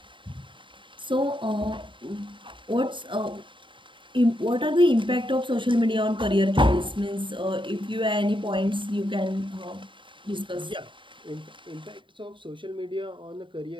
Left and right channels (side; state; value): left; late; 0.24 ms